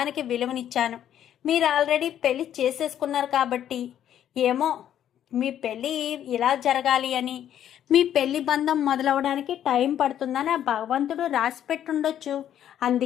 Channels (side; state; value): right; quieter; 10.5 dB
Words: విలువనిచ్చాను. మీరు ఆల్రెడీ పెళ్లి చేసేసుకున్నారు కాబట్టి ఏమో మీ పెళ్ళి ఇలా జరగాలి అని, మీ పెళ్లి బంధం మొదలవడానికి టైం పడుతుందని ఆ భగవంతుడు రాసి పెట్టుండొచ్చు,